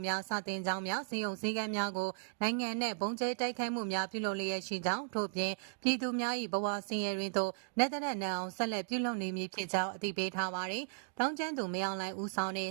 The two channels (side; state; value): left; silent; digital silence